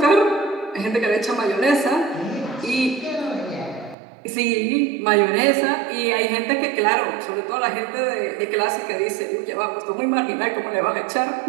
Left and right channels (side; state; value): left; drops out; at 4.0 s